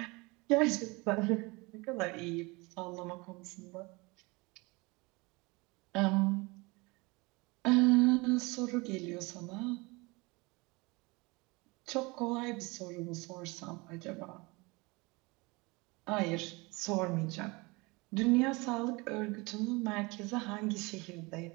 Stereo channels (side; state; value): left; quieter; 25.5 dB